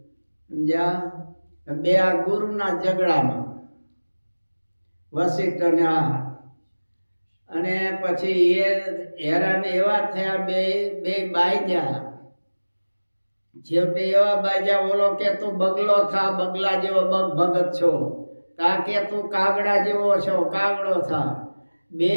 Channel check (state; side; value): inverted; both; correlation -1.00